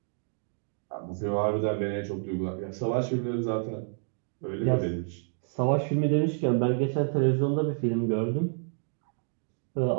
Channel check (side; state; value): left; silent; digital silence